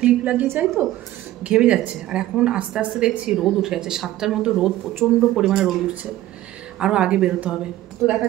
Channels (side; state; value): left; quieter; 14.8 dB